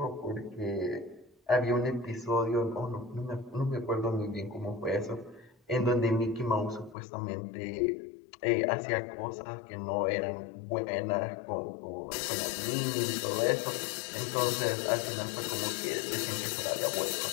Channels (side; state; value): right; drops out; at 7.0 s